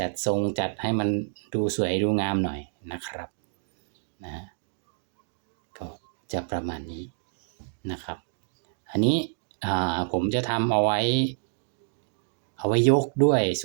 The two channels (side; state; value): left; silent; digital silence